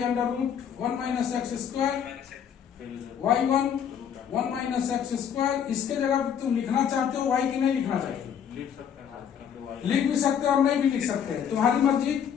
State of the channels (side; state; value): right; quieter; 8.3 dB